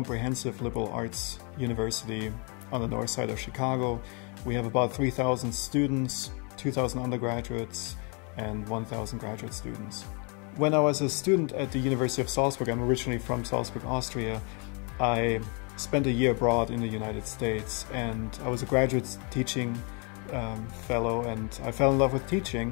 liberal arts university on the north side of Chicago. We have about 3,000 students, 2,000 undergraduates, and 1,000 graduate students. When I was a student at the University of Salzburg, I'm originally from Salzburg, Austria, I spent a year abroad in the United States, and I was a graduate teaching fellow, and I fell in love with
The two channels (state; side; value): quieter; right; 34.7 dB